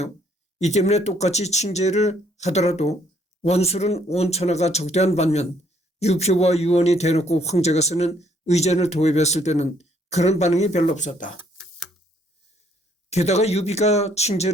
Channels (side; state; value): both; normal; correlation 0.66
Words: 이 때문에 똑같이 칭제를 하더라도 원술은 온 천하가 적대한 반면 유표와 유원이 대놓고 황제가 쓰는 의전을 도입했을 때는 그런 반응이 별로 없었다. 게다가 유비가